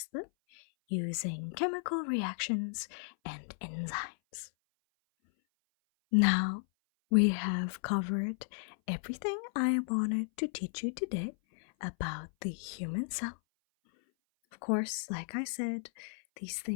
them using chemical reactions and enzymes. Now, we have covered everything I wanted to teach you today about the human cell. Of course, like I said, these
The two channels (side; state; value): right; silent; 55 dB below the other